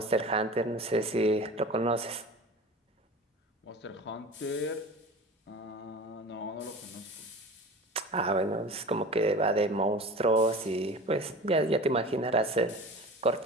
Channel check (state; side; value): normal; both; correlation 0.36